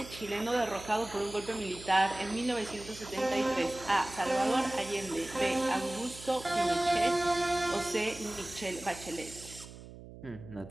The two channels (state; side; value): noise; right; hum, 16 dB below the sound